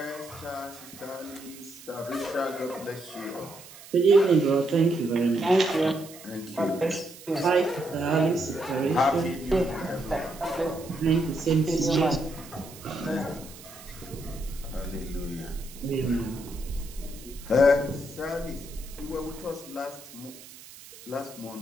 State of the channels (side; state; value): right; noise; hiss, 18 dB below the sound